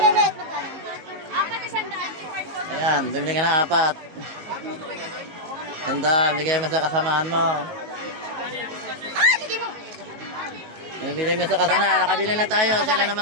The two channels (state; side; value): late; left; 19 ms